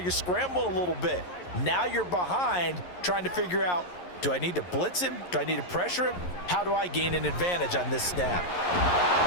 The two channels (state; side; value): late; right; 11 ms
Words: scrambling a little bit. Now you're behind trying to figure out, do I need to blitz him? Do I need to pressure him? How do I gain an advantage on this snap?